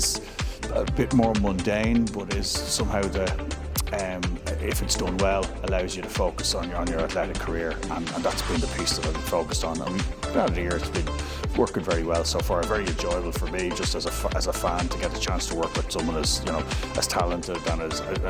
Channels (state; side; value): identical; both; correlation 1.00